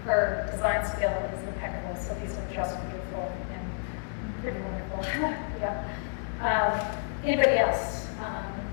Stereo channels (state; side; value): silent; right; 58 dB below the other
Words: her design skill is impeccable, so these are just beautiful and pretty wonderful. Yeah. Anybody else?